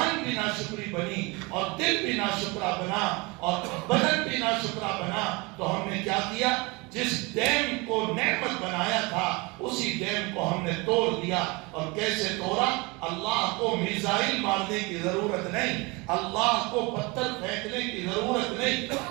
بھی ناشکری بنی اور دل بھی ناشکرا بنا اور بدن بھی ناشکرا بنا، تو ہم نے کیا کیا؟ جس ڈیم کو نعمت بنایا تھا اسی ڈیم کو ہم نے توڑ دیا. اور کیسے توڑا؟ اللہ کو میزائل مارنے کی ضرورت نہیں، اللہ کو پتھر پھینکنے کی ضرورت نہیں.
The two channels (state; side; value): quieter; left; 26.4 dB